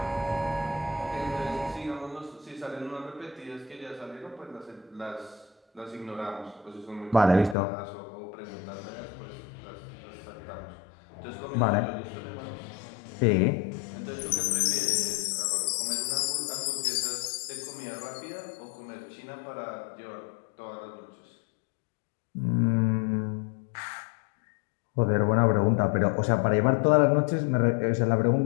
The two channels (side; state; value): right; drops out; at 7.6 s